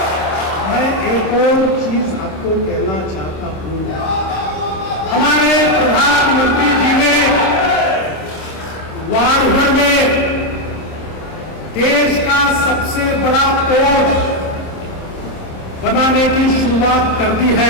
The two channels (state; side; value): late; right; 26 ms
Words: एक और चीज आपको कहना चाहता हूं. हमारे प्रधानमंत्री जी ने वारभर में देश का सबसे बड़ा पोर्ट बनाने की शुरुआत कर दी